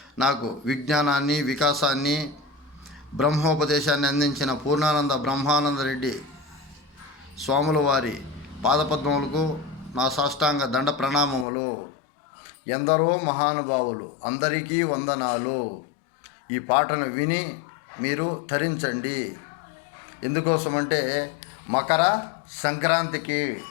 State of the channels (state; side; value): drops out; right; at 11.5 s